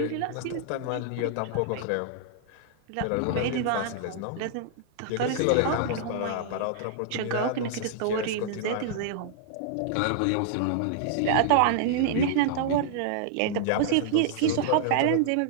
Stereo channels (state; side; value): different; both; correlation -0.01